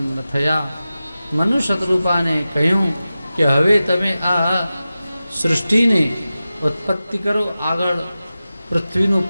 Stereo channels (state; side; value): inverted; both; correlation -0.94